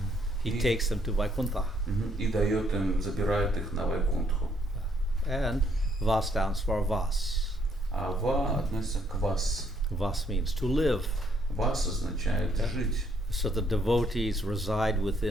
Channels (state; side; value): normal; both; correlation 0.69